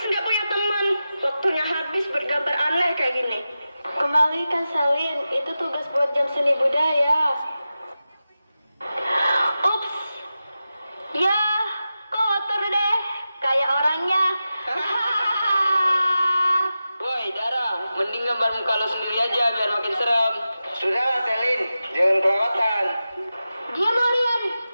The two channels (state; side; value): inverted; both; correlation -0.93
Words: nggak punya teman. Waktunya habis bergambar aneh kayak gini. Kembalikan Selin, itu tugas buat jam seni budaya. Ups, ya kotor deh, kayak orangnya. Woi Dara, mending gambar muka lo sendiri aja biar makin serem. Sudahlah Selin, jangan kelewatan. Diam kalian,